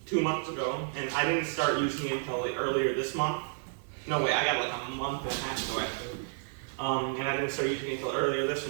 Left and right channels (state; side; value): silent; left; 57 dB below the other